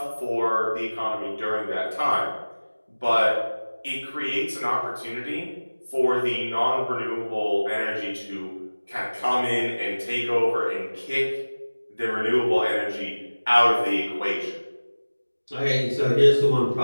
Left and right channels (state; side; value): inverted; both; correlation -1.00